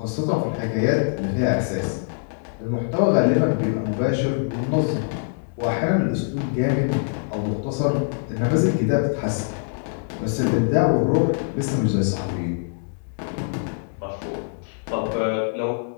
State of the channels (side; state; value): right; silent; 62 dB below the other